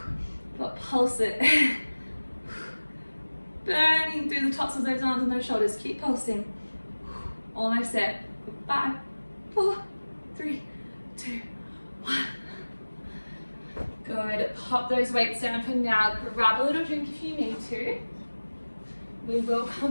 But pulse it. Burning through the tops of those arms and those shoulders. Keep pulsing. Almost there. 5, 4, 3, 2, 1. Good. Pop those weights down for now. Grab a little drink if you need to. We will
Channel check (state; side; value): inverted; both; correlation -1.00